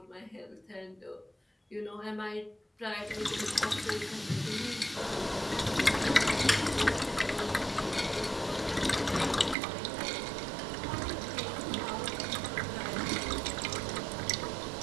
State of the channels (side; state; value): left; drops out; at 9.6 s